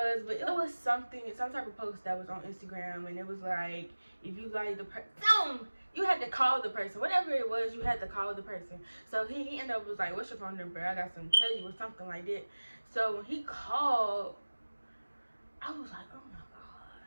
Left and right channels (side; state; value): both; inverted; correlation -1.00